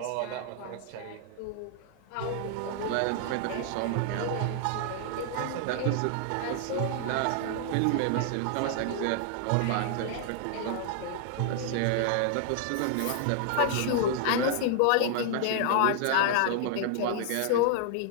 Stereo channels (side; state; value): both; different; correlation 0.00